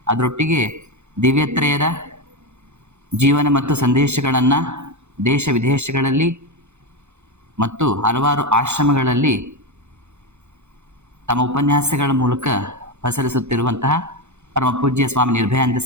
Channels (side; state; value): left; late; 0.82 ms